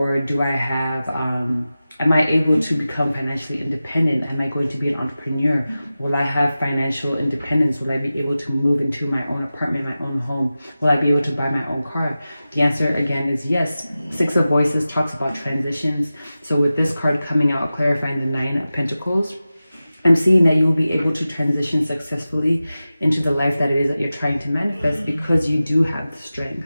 do I have, am I able to become financially independent? Am I going to be an entrepreneur? Will I have financial independence? Will I be able to move into my own apartment, my own home? Will I be able to buy my own car? The answer again is yes. Six of Voices talks about transitions. So with this card coming out, clarifying the Nine of Pentacles, I'm seeing that you'll be able to transition successfully into the life that it is that you're trying to manifest, because you do have the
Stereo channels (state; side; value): inverted; both; correlation -0.95